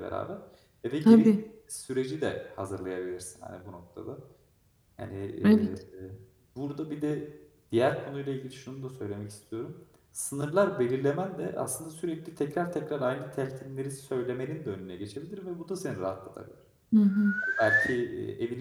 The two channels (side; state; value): both; identical; correlation 1.00